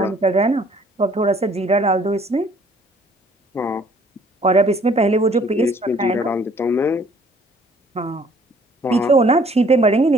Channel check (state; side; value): normal; both; correlation 0.58